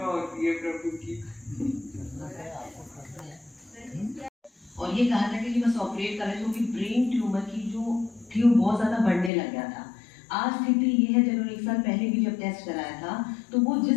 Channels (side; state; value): right; drops out; at 9.3 s